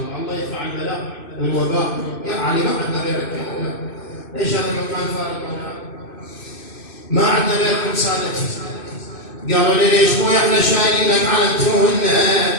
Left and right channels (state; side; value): late; right; 2.6 ms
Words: الله يدفع البلاء والوباء. يا علي ما عندنا غيرك يا أولاد، ليش هذا المكان فارغ مولانا؟ ما عندنا غيركم سادتي. قالوا لي ليش مو احنا شايلينك على التهنة؟